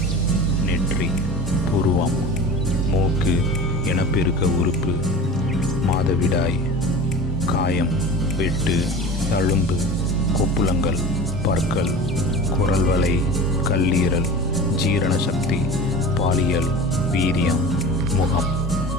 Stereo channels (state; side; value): normal; both; correlation 0.35